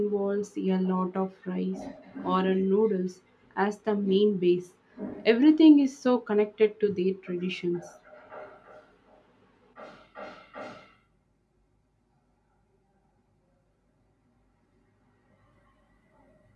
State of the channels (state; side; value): identical; both; correlation 1.00